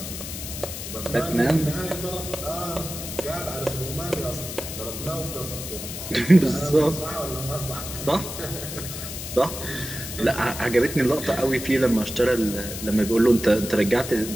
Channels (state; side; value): noise; left; hiss, 8 dB below the sound